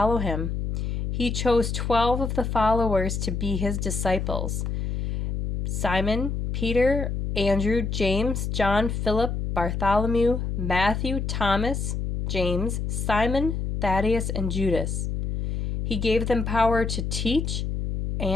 him. He chose 12 of the followers to be his disciples: Simon, Peter, Andrew, James, John, Philip, Bartholomew, Matthew, Thomas, James, Simon, Thaddeus, and Judas. He gave them power to teach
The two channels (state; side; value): noise; left; hum, 2 dB below the sound